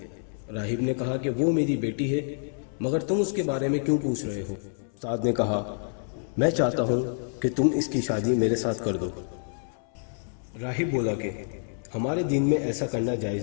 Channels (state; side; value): silent; right; 60 dB below the other